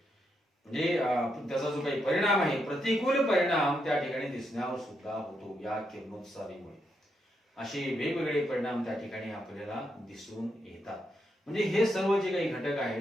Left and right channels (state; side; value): normal; both; correlation 0.81